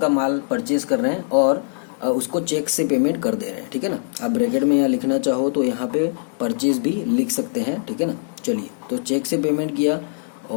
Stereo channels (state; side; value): silent; right; digital silence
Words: का माल परचेज कर रहे हैं और उसको चेक से पेमेंट कर दे रहे हैं, ठीक है ना। आप ब्रैकेट में यहाँ लिखना चाहो तो यहाँ पे परचेज भी लिख सकते हैं, ठीक है ना। चलिए, तो चेक से पेमेंट किया